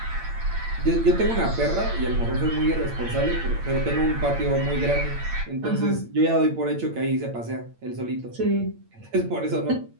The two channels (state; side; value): late; left; 8.8 ms